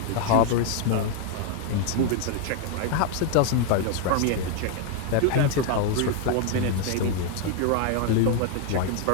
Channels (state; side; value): different; both; correlation 0.00